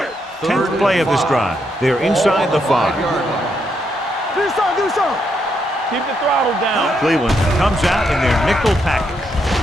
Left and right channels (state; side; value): normal; both; correlation 0.78